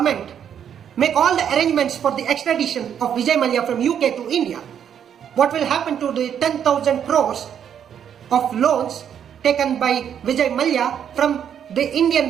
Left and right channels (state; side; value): quieter; left; 8.8 dB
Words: make all the arrangements for the extradition of Vijay Mallya from UK to India? What will happen to the 10,000 crores of loans taken by Vijay Mallya from the Indian